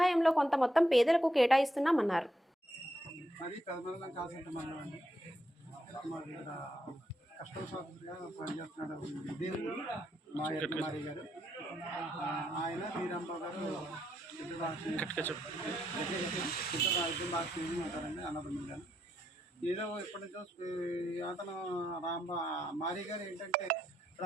కొంత మొత్తం పేదలకు కేటాయిస్తున్నామన్నారు. ఆయన శ్రీరాంబాబు గారు ఉంటారండి అన్నదమ్ములు గారు. ఏదో ఇప్పటి నుంచో అతను మారి గారు ఏంటంటే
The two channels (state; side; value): normal; both; correlation 0.79